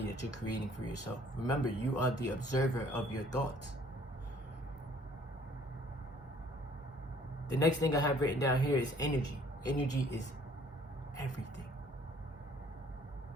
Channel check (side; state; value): both; normal; correlation 0.58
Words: that you're creating for yourself. Remember, you are the observer of your thoughts. The next thing I have written down here is energy. Energy is everything.